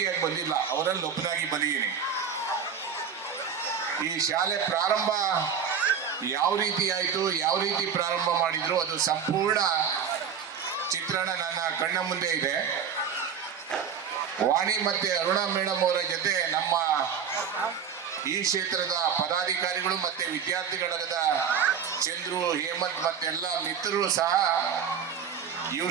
ಬಂದಿಲ್ಲ, ಅವರಲ್ಲಿ ಒಬ್ಬನಾಗಿ ಬಂದಿದ್ದೀನಿ. ಈ ಶಾಲೆ ಪ್ರಾರಂಭ ಯಾವ ರೀತಿ ಆಯಿತು, ಯಾವ ರೀತಿ ಪ್ರಾರಂಭ ಮಾಡಿದ್ರು, ಅದು ಸಂಪೂರ್ಣ ಚಿತ್ರಣ ನನ್ನ ಕಣ್ಣ ಮುಂದೆ ಇದೆ. ವಾಣಿ ಮತ್ತೆ ಅರುಣಾ ಮೇಡಮ್ ಅವರ ಜೊತೆ ನಮ್ಮ ಈ ಕ್ಷೇತ್ರದ ಪದಾಧಿಕಾರಿಗಳು ಮತ್ತೆ ವಿದ್ಯಾರ್ಥಿಗಳಾದ ಚಂದ್ರು, ಹೇಮಂತ್ ಮತ್ತೆಲ್ಲ ಮಿತ್ರರು ಸಹ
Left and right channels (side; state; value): left; quieter; 7.1 dB